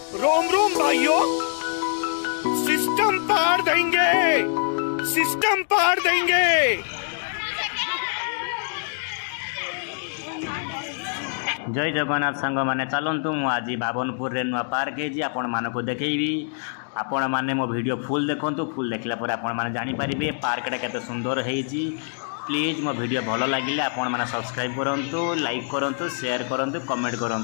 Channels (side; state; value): right; silent; digital silence